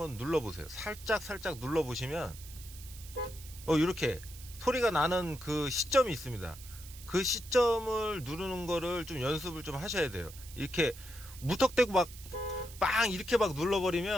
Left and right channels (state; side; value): noise; right; hiss, 17 dB below the sound